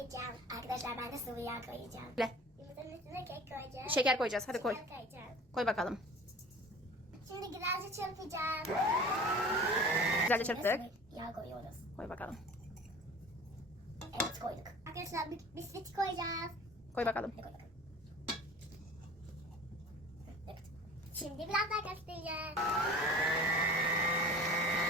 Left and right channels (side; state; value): both; normal; correlation 0.42